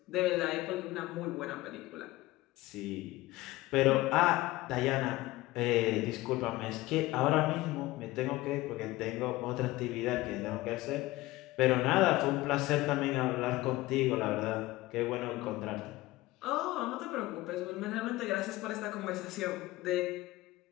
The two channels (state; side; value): quieter; right; 18.6 dB